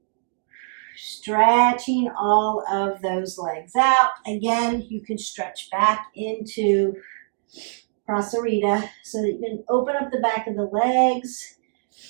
Stretching all of those legs out. Again, you can stretch back into Prasarita so that you can open up the back of the legs.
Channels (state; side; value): silent; left; digital silence